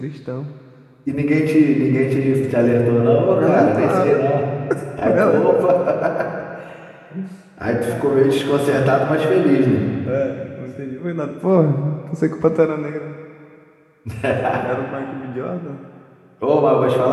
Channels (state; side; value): identical; both; correlation 1.00